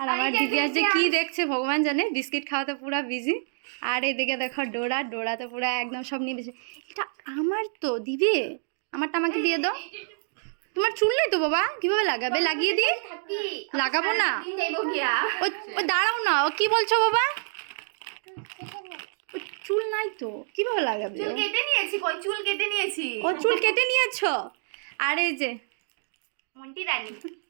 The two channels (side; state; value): left; silent; digital silence